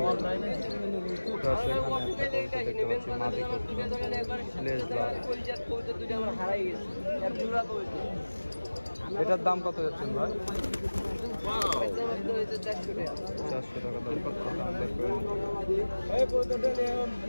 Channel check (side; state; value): both; inverted; correlation -1.00